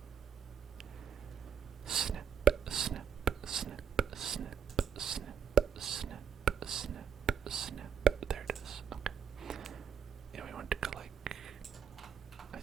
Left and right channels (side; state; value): left; quieter; 7.8 dB